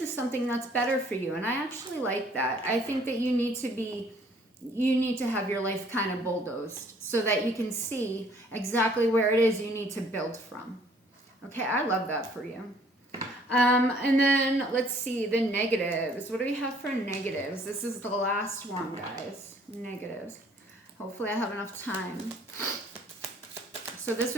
something that's better for you, and I actually like that. I think that you need to have your life kind of bulldozed so that you can see exactly where it is you need to build from. Okay, I love that for you. And then let's see the negatives. What do we have for negatives? This is the last one, guys. Negatives. Hopefully I have enough time. So this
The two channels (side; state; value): both; normal; correlation 0.59